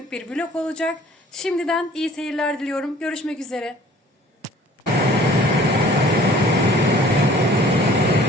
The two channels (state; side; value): normal; both; correlation 0.52